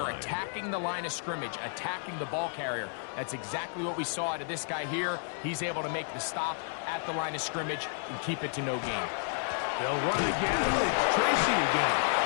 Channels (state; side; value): silent; right; 57 dB below the other